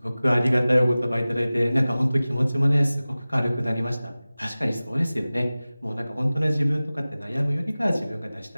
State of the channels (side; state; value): both; inverted; correlation -0.98